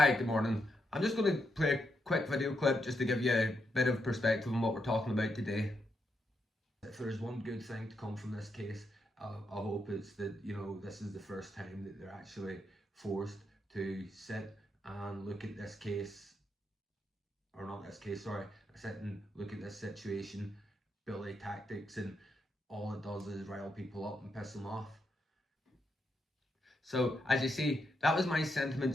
good morning. I'm just going to play a quick video clip just to give you a bit of perspective on what we're talking about today. If there's one good thing to come from this case, I hope it's that, this is the first time that they're actually forced to sit and look at this case, or not this case, sorry, sit and look at this situation, bully tactics, and all it does is rile people up and piss them off. So, as you see, that was my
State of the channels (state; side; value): normal; both; correlation 0.82